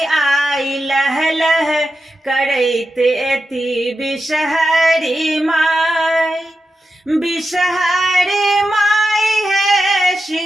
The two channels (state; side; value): normal; both; correlation 0.90